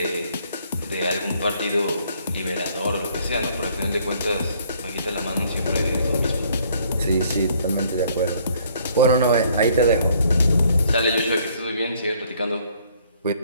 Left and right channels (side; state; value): both; inverted; correlation -0.63